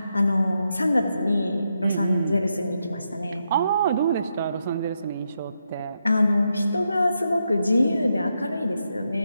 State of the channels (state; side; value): inverted; both; correlation -0.83